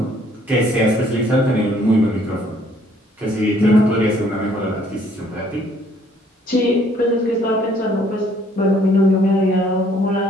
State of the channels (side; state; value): both; normal; correlation 0.62